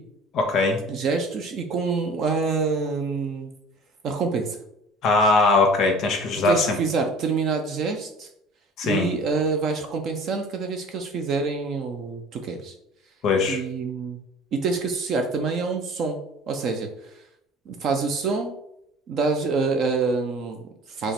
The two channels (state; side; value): normal; both; correlation 0.45